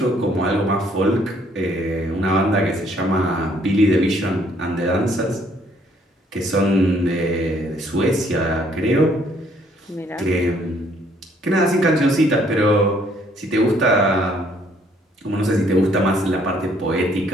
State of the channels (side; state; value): both; normal; correlation 0.64